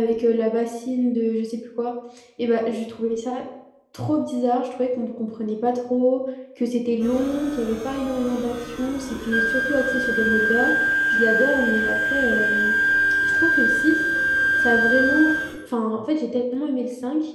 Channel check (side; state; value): both; identical; correlation 1.00